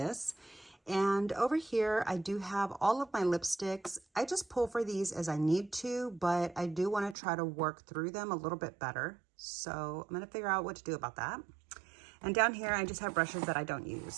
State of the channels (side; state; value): left; drops out; at 7.2 s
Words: And over here, I do have all of my lipsticks. I just pull for these as I need to, but I do want to try to work through them a little bit better. So I'm going to figure out what to do about that. And down here, I just have brushes that I don't